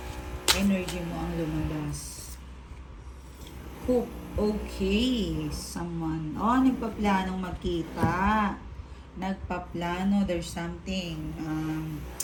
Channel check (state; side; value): identical; both; correlation 1.00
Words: energy mo ang lumabas. Hope. Okay. Someone. Nagpaplanong magkita. Nagpaplano. There's something.